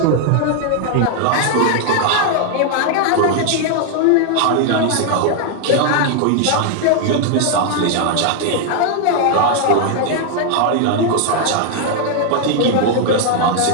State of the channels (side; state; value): both; different; correlation 0.00